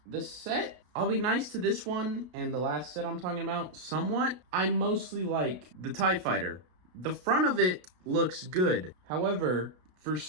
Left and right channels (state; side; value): late; left; 33 ms